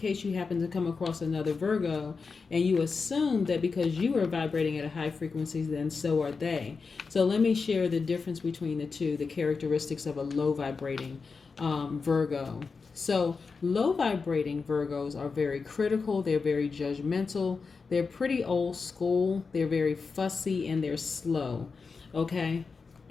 you happen to come across another Virgo and you assume that because you are vibrating at a high frequency, then so are they. So let me share the difference between the two, the characteristics of a low vibrating Virgo. So low vibrating Virgos are very critical, they're very judgmental, they're pretty old school, they're very fussy, and they're slow. Okay?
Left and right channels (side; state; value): right; quieter; 4.8 dB